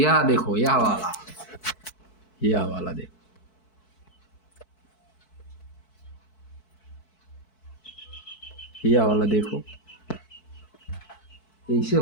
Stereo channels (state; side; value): late; right; 4.6 ms